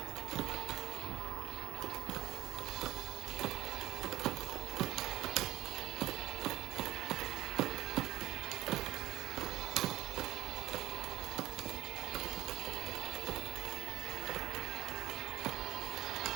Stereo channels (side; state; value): left; quieter; 16.1 dB